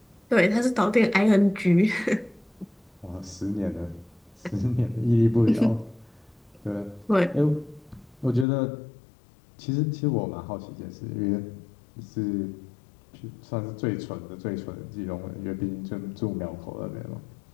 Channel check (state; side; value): drops out; right; at 8.5 s